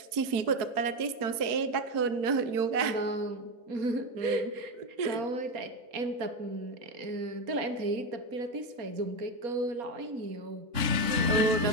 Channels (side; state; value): left; late; 4.6 ms